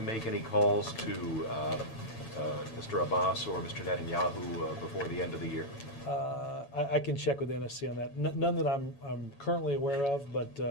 make any calls to Mr. Abbas or Mr. Netanyahu before the end of the year? I can check with NSC on that. None that I'm currently aware of, but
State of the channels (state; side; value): late; right; 7.1 ms